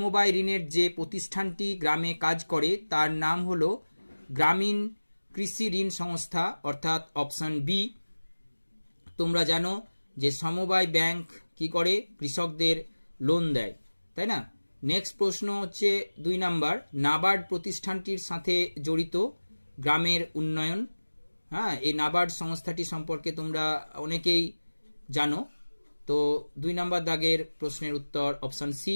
ঋণের যে প্রতিষ্ঠানটি গ্রামে কাজ করে তার নাম হলো গ্রামীণ কৃষি ঋণ সংস্থা, অর্থাৎ অপশন বি। তোমরা জানো যে সমবায় ব্যাংক কি করে, কৃষকদের লোন দেয়, তাই না? নেক্সট প্রশ্ন হচ্ছে 2 নাম্বার, নাবার্ড প্রতিষ্ঠানটির সাথে জড়িত গ্রামের উন্নয়ন। হ্যাঁ, এই নাবার্ড সংস্থাটি সম্পর্কে তোমরা অনেকেই জানো। তো 2 নাম্বার দাগের প্রশ্নের উত্তর অপশন সি।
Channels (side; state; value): both; inverted; correlation -1.00